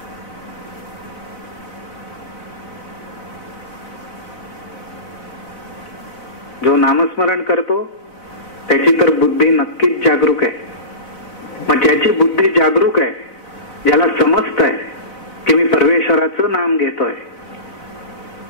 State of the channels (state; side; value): late; right; 4.0 ms